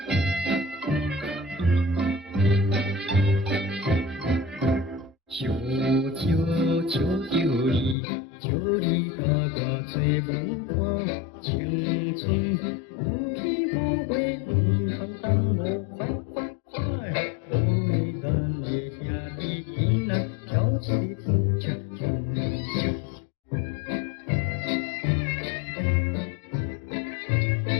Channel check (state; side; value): drops out; right; at 8.0 s